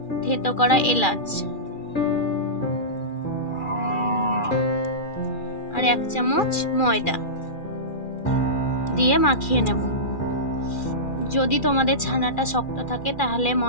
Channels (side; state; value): right; late; 2.4 ms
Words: থেতো করা এলাচ আর 1 চামচ ময়দা দিয়ে মাখিয়ে নেব। যদি তোমাদের ছানাটা শক্ত থাকে তাহলে